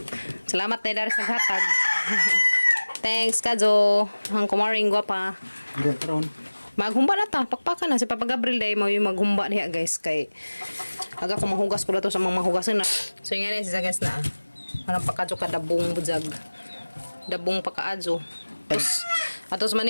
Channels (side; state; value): both; inverted; correlation -1.00